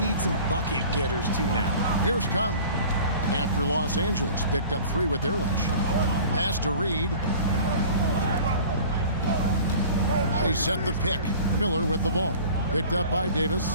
some bucket getters too now. Here's Conley. After Los Angeles picked up 3 with their last shot. Pass to Reed. They set the pick. Miller with the ball. Picked up by Davis.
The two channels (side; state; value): both; inverted; correlation -0.44